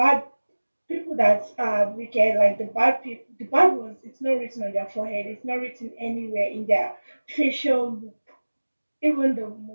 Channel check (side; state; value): both; inverted; correlation -1.00